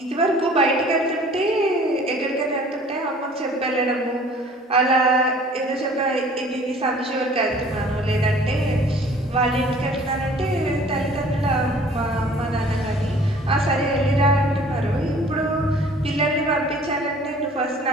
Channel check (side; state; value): both; normal; correlation 0.51